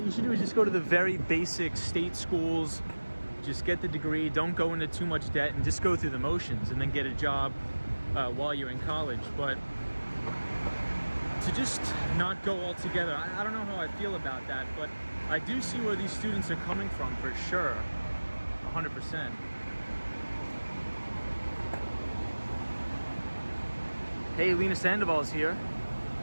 you should do is just go to the very basic state schools, just get the degree, don't go into too much debt, and just go through the motions and then get a job while you're in college. But to just not go altogether, I don't know how I feel about that, but I do see where these students are coming from for sure, 100%. Hey, Lena Sandoval's here.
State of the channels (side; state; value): both; inverted; correlation -1.00